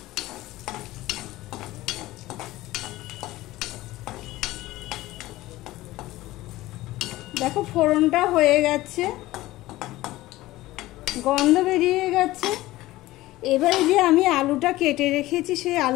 দেখো ফোড়নটা হয়ে গেছে, গন্ধ বেরিয়ে গেছে। এবারে যে আমি আলুটা কেটে রেখেছি সেই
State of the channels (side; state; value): right; quieter; 17.4 dB